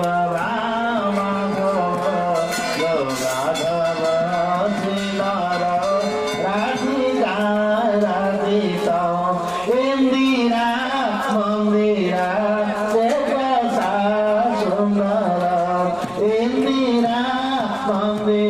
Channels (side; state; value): right; noise; rumble, 25 dB below the sound